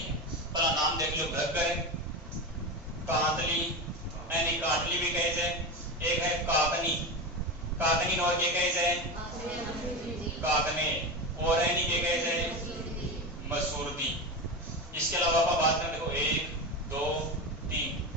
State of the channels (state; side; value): normal; both; correlation 0.21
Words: पहला नाम देख लो, घग्गर, कांतली, यानी काटली भी कहे जाए। एक है काकनी, काकनी और के कहे जाए काकने, और यानी के कहे जाए मसूरदी। इसके अलावा आप बात करें, देखो 1 2 3,